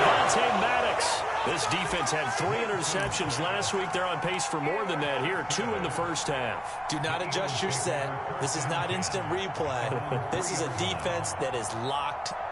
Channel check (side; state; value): both; identical; correlation 1.00